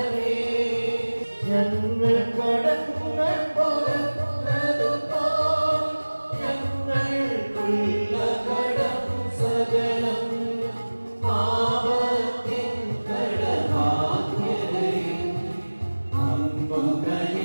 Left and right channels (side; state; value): both; inverted; correlation -1.00